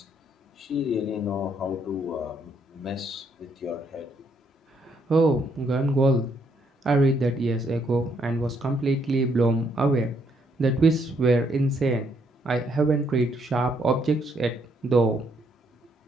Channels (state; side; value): normal; both; correlation 0.72